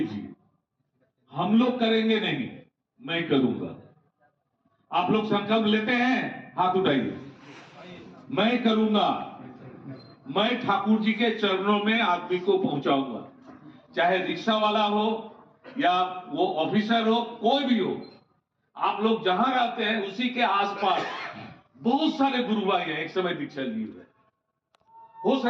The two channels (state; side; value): identical; both; correlation 1.00